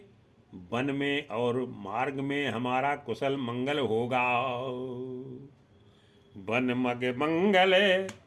वन में और मार्ग में हमारा कुशल मंगल होगा। वन मग मंगल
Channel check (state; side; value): identical; both; correlation 1.00